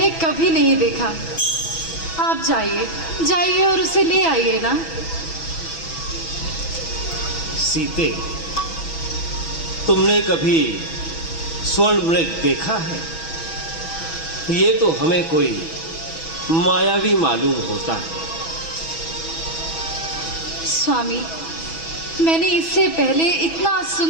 कभी नहीं देखा। आप जाइए जाइए और उसे ले आइए ना। सीते, तुमने कभी स्वर्ण मृग देखा है? ये तो हमें कोई मायावी मालूम होता है। स्वामी, मैंने इससे पहले इतना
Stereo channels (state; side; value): late; right; 6.1 ms